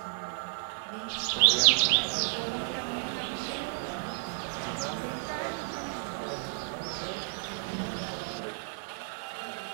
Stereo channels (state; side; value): silent; left; 57 dB below the other